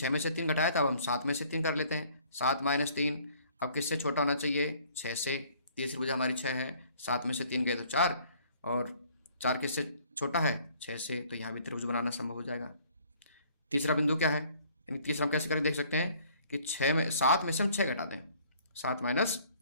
में से 3 घटाया था, अब हम 7 में से 3 कर लेते हैं। 7 माइनस 3, अब किससे छोटा होना चाहिए, 6 से। तीसरी भुजा हमारी 6 है, 7 में से 3 गए तो 4, और 4 किससे छोटा है, 6 से, तो यहाँ भी त्रिभुज बनाना संभव हो जाएगा। तीसरा बिंदु क्या है, यानी तीसरा हम कैसे करके देख सकते हैं कि 7 में से हम 6 घटा दें, 7 माइनस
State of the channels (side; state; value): both; inverted; correlation -0.58